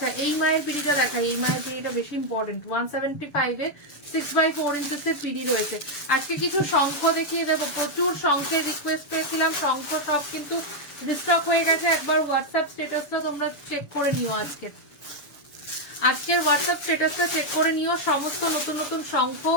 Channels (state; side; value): late; right; 7.0 ms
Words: এই মায়ের পিড়িটা দেখাই। এই মায়ের পিড়িটা বেশি ইম্পর্টেন্ট। 175-এ 6x4 ইঞ্চেসের পিড়ি রয়েছে। আজকে কিছু শঙ্খ দেখিয়ে দেবো। প্রচুর শঙ্খের রিকোয়েস্ট পেয়েছিলাম, শঙ্খ সব কিন্তু রিস্টক হয়ে গেছে। একবার হোয়াটসঅ্যাপ স্ট্যাটাসটা তোমরা চেক করে নিও। আজকের হোয়াটসঅ্যাপ স্ট্যাটাসটা চেক করে নিও। সমস্ত নতুন নতুন শঙ্খ